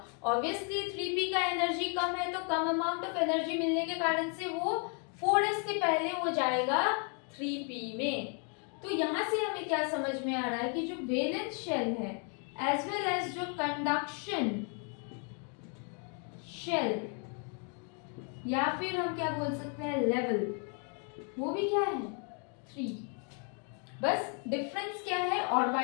ऑब्वियसली 3p का एनर्जी कम है तो कम अमाउंट ऑफ एनर्जी मिलने के कारण से वो 4s के पहले वो जाएगा 3p में। तो यहाँ से हमें क्या समझ में आ रहा है कि जो वैलेंस शेल है एज वेल एज जो कंडक्शन शेल या फिर हम क्या बोल सकते हैं लेवल, वो भी क्या है 3। बस डिफरेंस क्या है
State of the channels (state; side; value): quieter; right; 39.9 dB